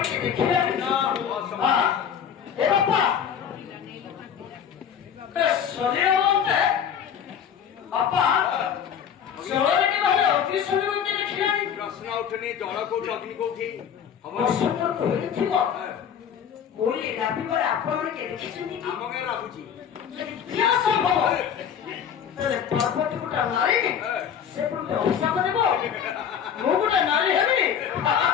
ପ୍ରଶ୍ନ ଉଠୁନି ଜଳ କୋଉଠି ଅଗ୍ନି କୋଉଠି ଆପଣ ଦେଖିଛନ୍ତି ଆମ ଗାଁ ଲାଗୁଛି ପର୍ବତୀ ଗୋଟେ ନାରୀ ସେ ଗୋଟେ ଅଭିଶାପ ଦେବ ମୁଁ ଗୋଟେ ନାରୀ ହେବି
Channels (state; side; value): quieter; right; 8.2 dB